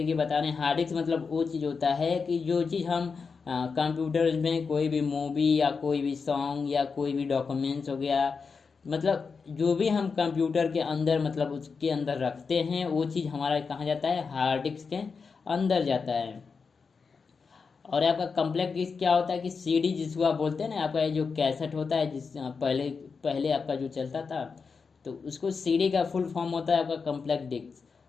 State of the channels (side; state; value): right; quieter; 5.2 dB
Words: बताने। हार्ड डिस्क मतलब वो चीज़ होता है कि जो चीज़ हम कंप्यूटर में कोई भी मूवी या कोई भी सॉन्ग या कोई भी डॉक्यूमेंट्स हो गया, मतलब जो भी हम कंप्यूटर के अंदर मतलब उसके अंदर रखते हैं वो चीज़ हमारा कहाँ जाता है, हार्ड डिस्क के अंदर जाता है। और आपका कॉम्पैक्ट डिस्क क्या होता है कि सीडी जिसको आप बोलते हैं ना, आपका जो कैसेट होता है जिस पहले आपका जो चलता था तो उसको सीडी का फुल फॉर्म होता है आपका कॉम्पैक्ट डिस्क।